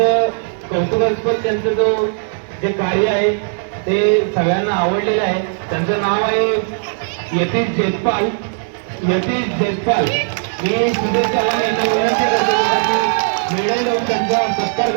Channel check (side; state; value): left; silent; digital silence